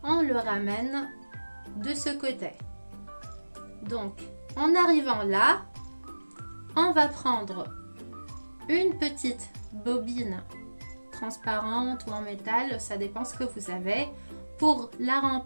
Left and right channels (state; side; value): inverted; both; correlation -1.00